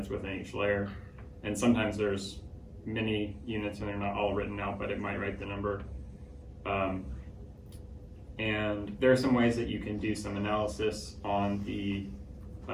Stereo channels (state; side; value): identical; both; correlation 1.00